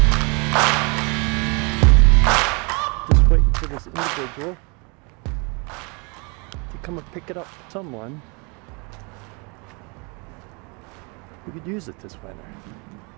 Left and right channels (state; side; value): quieter; left; 31.4 dB